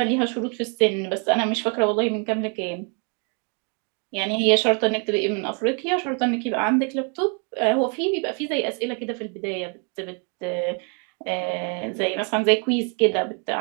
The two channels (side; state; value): left; quieter; 37.9 dB